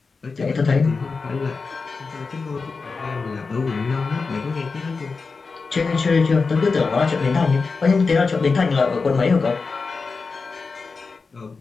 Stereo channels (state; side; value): quieter; right; 4.5 dB